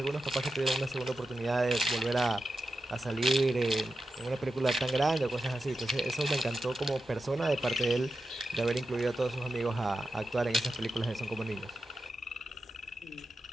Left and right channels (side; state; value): both; normal; correlation 0.90